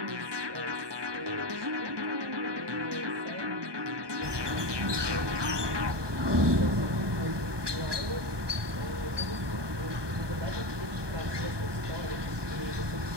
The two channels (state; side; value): late; left; 1.2 ms